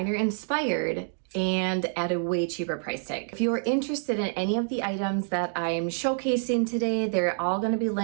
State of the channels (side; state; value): left; silent; 60 dB below the other